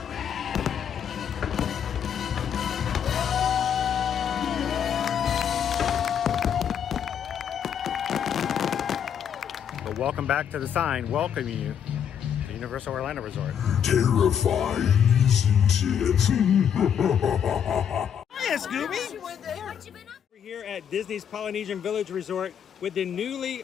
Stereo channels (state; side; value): quieter; right; 8.4 dB